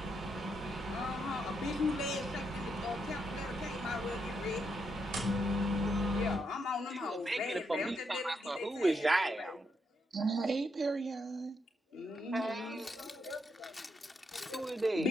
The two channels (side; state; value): both; normal; correlation 0.80